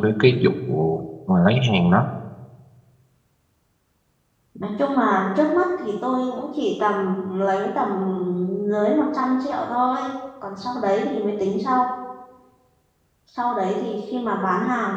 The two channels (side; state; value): both; identical; correlation 1.00